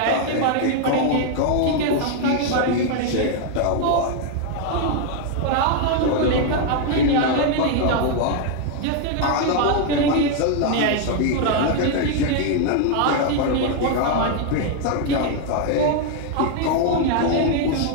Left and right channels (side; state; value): both; different; correlation 0.00